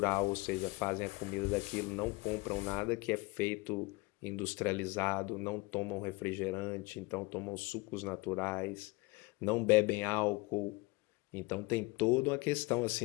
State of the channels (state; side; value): quieter; right; 24.8 dB